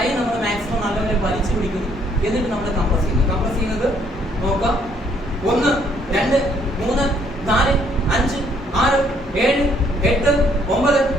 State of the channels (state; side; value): normal; both; correlation 0.66